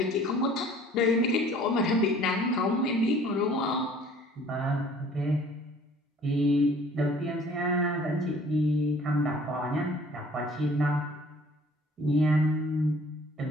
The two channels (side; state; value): both; normal; correlation 0.53